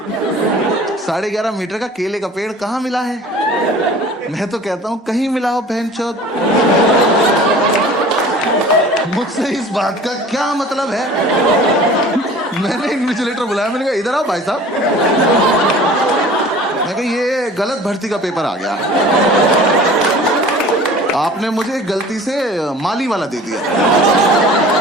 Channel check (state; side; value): normal; both; correlation 0.44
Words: 11.5 मीटर का केले का पेड़ कहां मिला है? मैं तो कहता हूं कहीं मिला हो बहनचोद। मुझसे इस बात का क्या मतलब है? मैंने इन्विजिलेटर बुलाया, मैंने कहा इधर आओ भाई साहब। मैं कहा ये गलत भर्ती का पेपर आ गया, आपने मुझे गलती से माली वाला दे दिया,